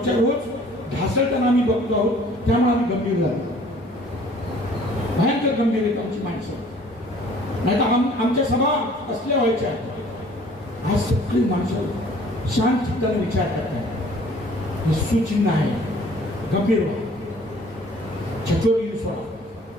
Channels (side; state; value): both; normal; correlation 0.54